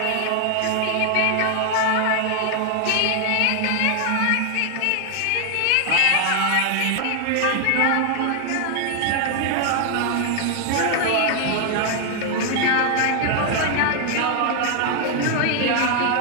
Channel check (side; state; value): both; different; correlation 0.00